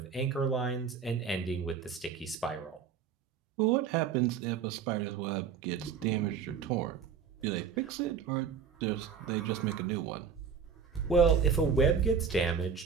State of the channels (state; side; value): quieter; left; 6.6 dB